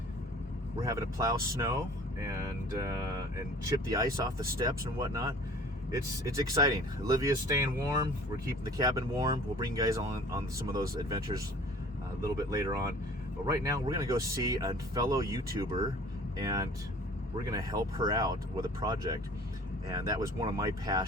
we're having to plow snow and chip the ice off the steps and whatnot. It's exciting. Olivia's staying warm. We're keeping the cabin warm. We'll bring you guys on some of those adventures a little bit later on. But right now, we're gonna go see a fellow YouTuber, and we're gonna help her out with a project. And that was one of my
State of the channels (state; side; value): normal; both; correlation 0.48